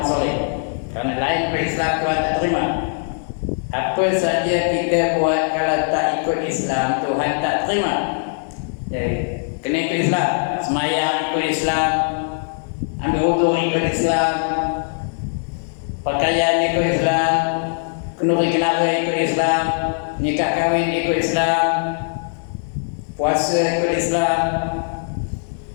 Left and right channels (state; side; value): silent; right; 56 dB below the other